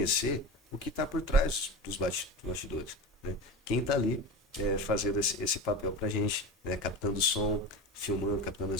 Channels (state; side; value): normal; both; correlation 0.29